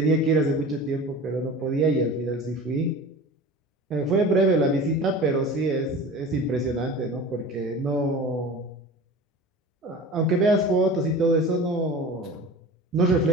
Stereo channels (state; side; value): normal; both; correlation 0.36